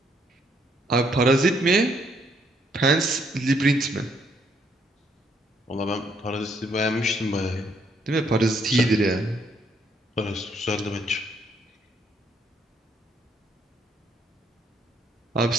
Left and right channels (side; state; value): both; normal; correlation 0.70